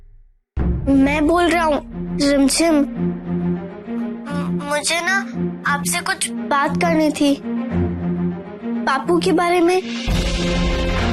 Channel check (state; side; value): identical; both; correlation 1.00